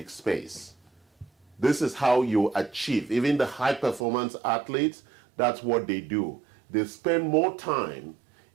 space. This is how you achieve. Even the high performance athletes, that's what they do. They spend more time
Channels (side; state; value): left; drops out; at 4.0 s